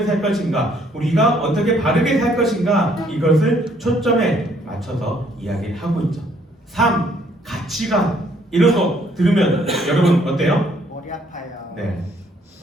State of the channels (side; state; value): both; normal; correlation 0.65